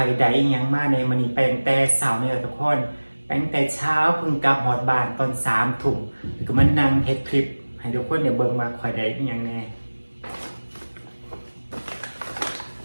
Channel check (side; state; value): both; inverted; correlation -1.00